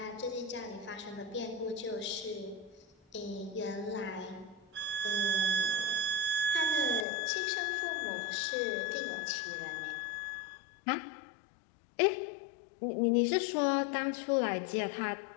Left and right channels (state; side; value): drops out; right; at 7.1 s